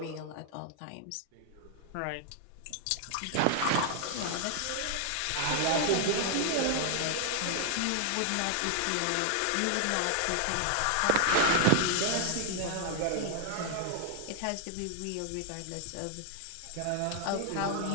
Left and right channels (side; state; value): both; different; correlation 0.00